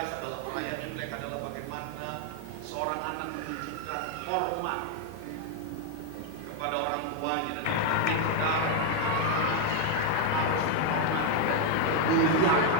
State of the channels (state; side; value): different; both; correlation 0.01